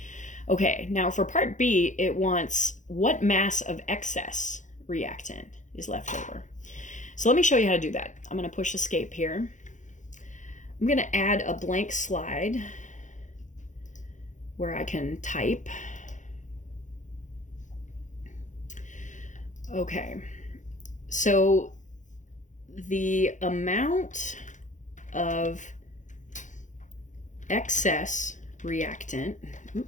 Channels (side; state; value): right; late; 0.36 ms